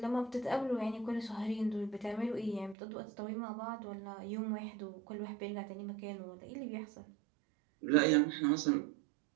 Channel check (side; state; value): left; drops out; at 2.8 s